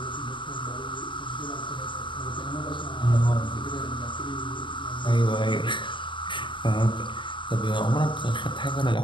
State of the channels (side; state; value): right; late; 0.24 ms